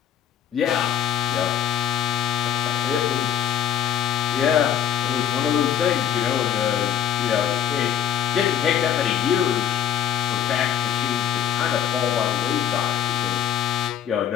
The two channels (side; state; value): right; quieter; 9.8 dB